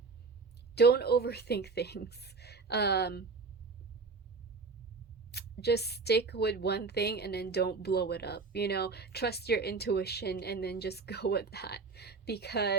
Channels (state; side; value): quieter; left; 4.4 dB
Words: don't overthink things. Um, just stick with one thing and then don't blow it up. Trust your intuition and then just go with that.